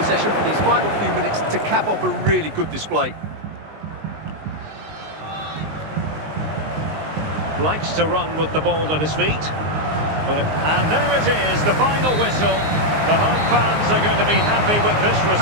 for these final few minutes to cap off a really good display. Likes to run with the ball at his feet. And there it is, the final whistle. The home fans are going to be happy with this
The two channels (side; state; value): left; late; 19 ms